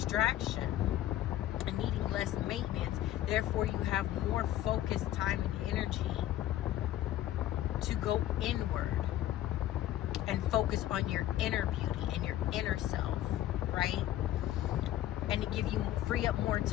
and needing less maintenance. Therefore, you have more focused time and energy to go inward and focus on your inner beauty and your inner self, right? And to give you, free up more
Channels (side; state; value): right; quieter; 13.4 dB